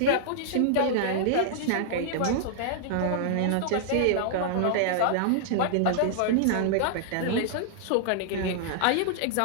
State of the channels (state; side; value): different; both; correlation -0.01